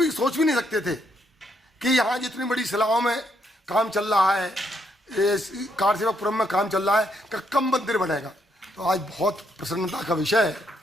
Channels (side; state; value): both; normal; correlation 0.75